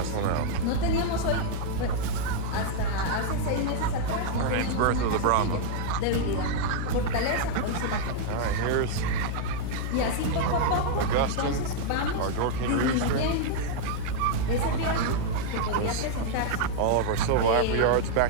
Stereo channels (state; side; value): different; both; correlation -0.01